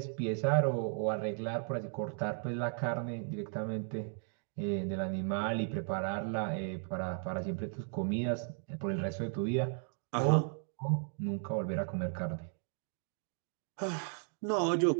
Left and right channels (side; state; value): left; silent; 54 dB below the other